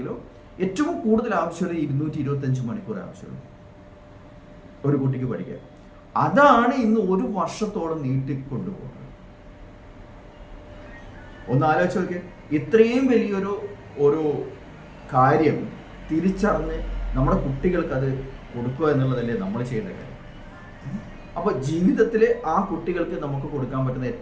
ഏറ്റവും കൂടുതൽ ആവശ്യമുള്ളത് 225 മണിക്കൂർ ആവശ്യമുള്ളൂ ഒരു കുട്ടിക്ക് പഠിക്കാൻ. അതാണ് ഇന്ന് 1 വർഷത്തോളം നീട്ടിക്കൊണ്ടുപോകുന്നത്. ഒന്ന് ആലോചിച്ച് നോക്കിയേ, ഇത്രയും വലിയൊരു കാര്യം തിരിച്ചറിഞ്ഞ് നമ്മുടെ കുട്ടികൾക്ക് അത് കൊടുക്കുക എന്നുള്ളതല്ലേ നമ്മൾ ചെയ്യുന്ന കാര്യം. അപ്പോൾ ജീവിതത്തിൽ ആ കുട്ടികൾക്ക് നമുക്ക് കൊടുക്കാൻ പറ്റുന്ന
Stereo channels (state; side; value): identical; both; correlation 1.00